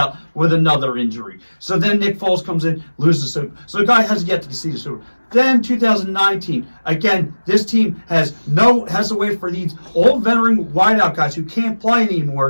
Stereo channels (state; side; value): inverted; both; correlation -1.00